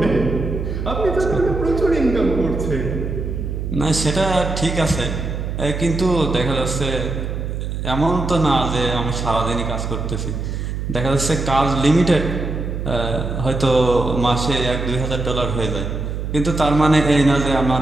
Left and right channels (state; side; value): noise; right; hum, 4 dB below the sound